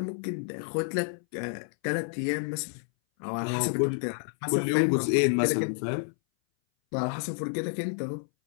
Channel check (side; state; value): right; silent; 58 dB below the other